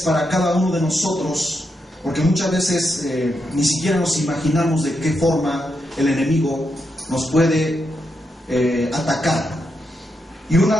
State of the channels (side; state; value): both; normal; correlation 0.83